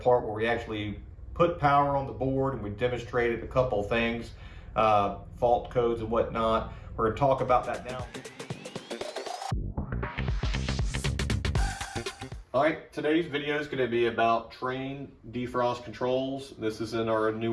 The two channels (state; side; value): identical; both; correlation 1.00